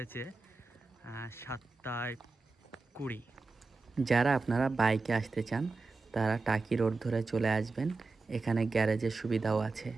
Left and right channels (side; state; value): left; quieter; 3.8 dB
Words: 7:20। যারা আপনারা বাইকে আসতে চান তারা টাকি রোড ধরে চলে আসবেন, এখানে গ্যারেজের সুবিধাও আছে।